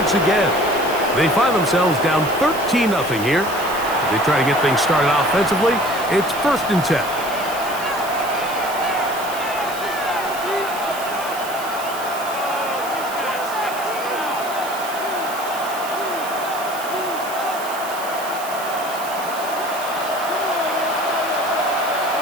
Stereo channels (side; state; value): right; noise; hiss, 13 dB below the sound